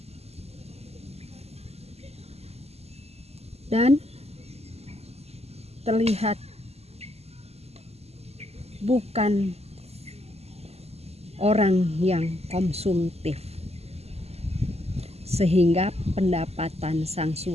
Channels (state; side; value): late; left; 0.30 ms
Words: Dan terlihat bukan orang yang konsumtif, sehingga pendapatan sang